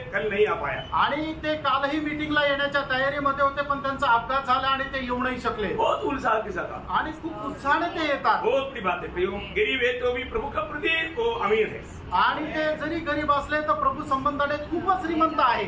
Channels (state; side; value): identical; both; correlation 1.00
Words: कल नहीं आ पाया। आणि ते कालही मीटिंगला येण्याच्या तयारीमध्ये होते पण त्यांचा अपघात झाला आणि ते येऊ नाही शकले। बहुत उत्साह के साथ आणि खूप उत्साहाने ते येतात। बहुत बड़ी बात है, गरीब है तो भी प्रभु का प्रति वो अमीर है। आणि ते जरी गरीब असले तर प्रभू संबंधाने खूपच श्रीमंत आहे।